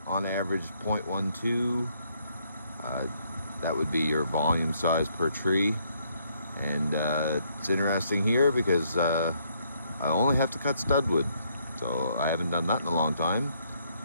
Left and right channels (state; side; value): inverted; both; correlation -0.71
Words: on average 0.12. That would be your volume size per tree. And it's interesting here because I only have to cut studwood, so I haven't done that in a long time.